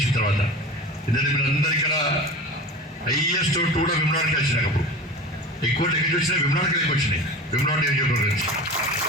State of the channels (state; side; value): normal; both; correlation 0.33